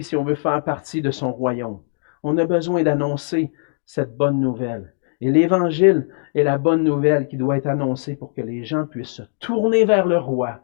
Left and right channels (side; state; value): right; silent; digital silence